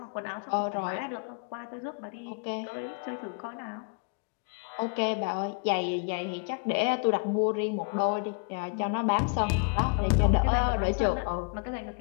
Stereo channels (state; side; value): quieter; right; 36.6 dB